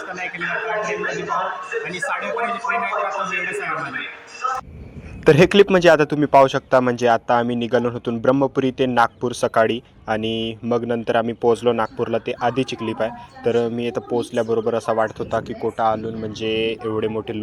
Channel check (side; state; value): both; identical; correlation 1.00